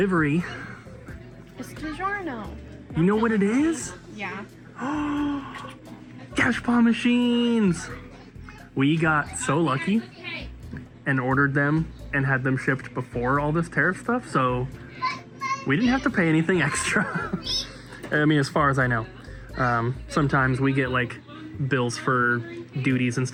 It's DiGiorno. You know what it is? Yeah. Cash paw machines! We got so lucky and ordered them and had them shipped before all this tariff stuff, so we didn't have to pay anything extra. I mean, as far as I know. Sometimes we get like bills for duties and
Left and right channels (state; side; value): identical; both; correlation 1.00